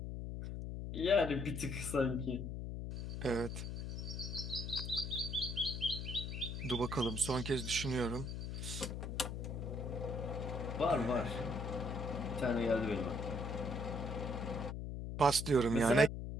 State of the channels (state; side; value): noise; left; hum, 5 dB below the sound